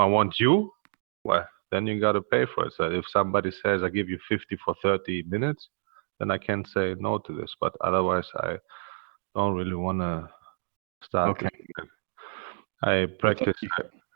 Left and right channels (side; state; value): left; silent; digital silence